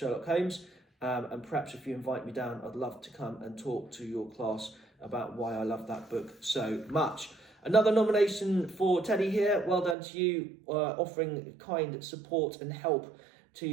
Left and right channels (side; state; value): left; drops out; at 10.0 s